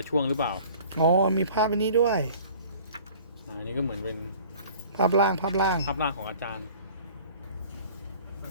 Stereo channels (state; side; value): inverted; both; correlation -0.47